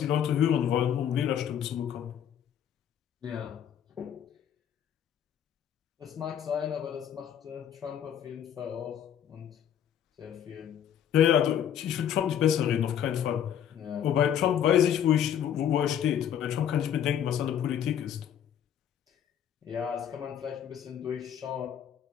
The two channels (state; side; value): quieter; right; 9.5 dB